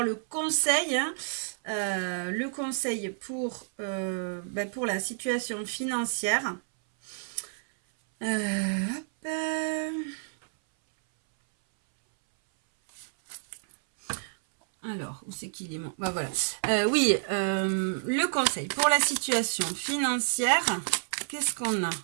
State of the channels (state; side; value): silent; left; 58 dB below the other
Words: le conseil, hein. Le conseil pour la situation financière. Alors, où c'est qu'il est mon... Bah voilà. Oui, le conseil pour la situation financière. Qu'est-ce qu'on